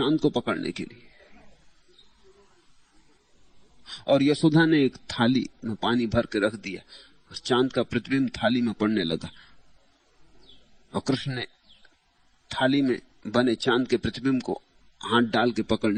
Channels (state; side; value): identical; both; correlation 1.00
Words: को पकड़ने के लिए, और यशोदा ने एक थाली में पानी भर के रख दिया और चांद का प्रतिबिंब थाली में पड़ने लगा, और कृष्ण ने थाली में बने चांद के प्रतिबिंब को हाथ डाल के